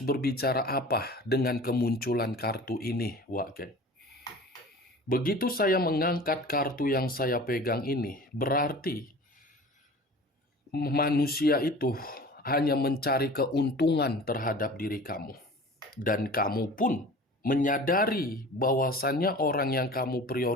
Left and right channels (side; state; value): both; normal; correlation 0.41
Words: berbicara apa dengan kemunculan kartu ini, Wak Geng. Begitu saya mengangkat kartu yang saya pegang ini, berarti manusia itu hanya mencari keuntungan terhadap diri kamu. Dan kamu pun menyadari bahwasannya orang yang kamu